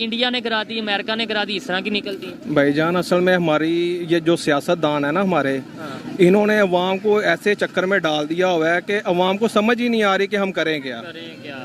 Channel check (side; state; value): both; identical; correlation 1.00